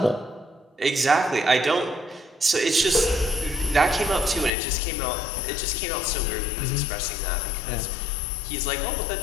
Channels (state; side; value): drops out; right; at 4.5 s